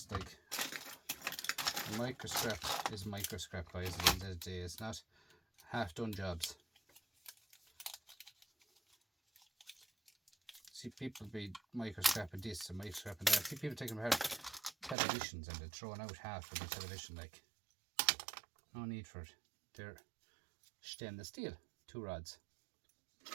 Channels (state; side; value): drops out; left; at 15.0 s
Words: like micro scrap is micro scrap, guys. At the end of the day, it's not half done jobs. See people be micro scrapping this and micro scrapping that. See people taking apart televisions and they're throwing out half of the television, like, no need for it. They're stainless steel, 2 rods. Do